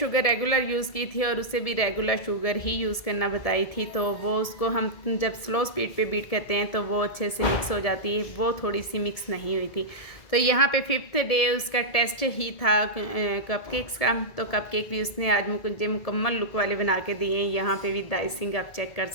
रेगुलर यूज़ की थी और उसे भी रेगुलर शुगर ही यूज़ करना बताई थी। तो वो उसको हम जब स्लो स्पीड पे बीट करते हैं तो वो अच्छे से मिक्स हो जाती है, वो थोड़ी सी मिक्स नहीं हुई थी। तो यहाँ पे फिफ्थ डे उसका टेस्ट ही था कपकेक्स का। तो कपकेक भी उसने आज मुझे मुकम्मल लुक वाले बना के दिए हैं। यहाँ पे भी आइसिंग आप चेक कर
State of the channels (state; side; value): late; right; 1.7 ms